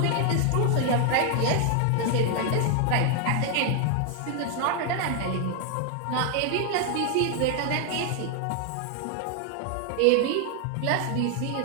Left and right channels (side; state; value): both; different; correlation 0.00